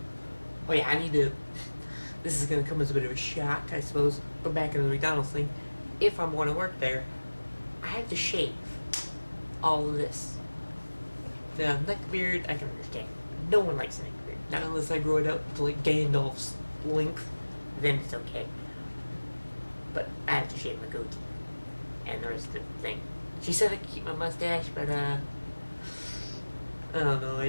Oh yeah, this is going to come as a bit of a shock, I suppose, but back into the McDonald's thing. If I want to work there, I have to shave all of this. The neck beard, I can understand. No one likes a neck beard. Not unless I grow it out to like Gandalf's length, then it's okay. But I have to shave my goatee and the rest of the thing. She said I could keep my mustache, but I don't know,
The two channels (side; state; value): both; inverted; correlation -1.00